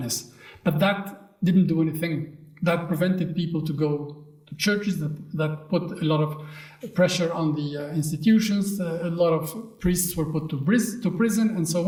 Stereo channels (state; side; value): identical; both; correlation 1.00